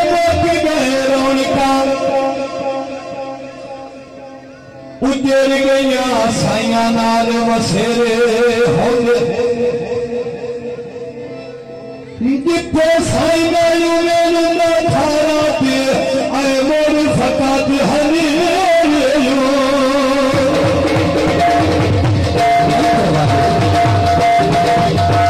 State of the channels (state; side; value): identical; both; correlation 1.00